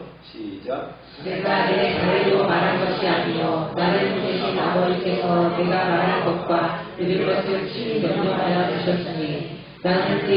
시작. 내가 내 자의로 말한 것이 아니요 나를 보내신 아버지께서 내가 말한 것과 들을 것을 친히 명령하여 주셨으니 나는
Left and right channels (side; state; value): both; identical; correlation 1.00